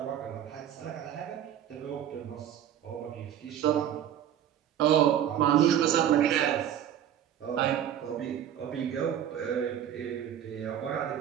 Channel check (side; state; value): left; quieter; 10.4 dB